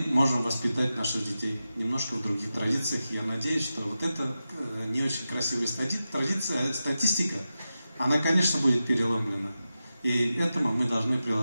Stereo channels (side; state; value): both; inverted; correlation -0.92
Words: можем воспитать наших детей немножко в других традициях. Я надеюсь, что вот эта не очень красивая статистика, она, конечно, будет переломлена. И этому мы должны